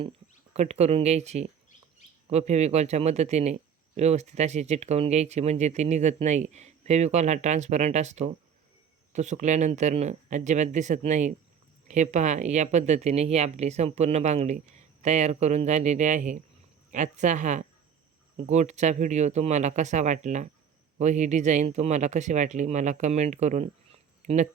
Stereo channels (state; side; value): quieter; left; 7.6 dB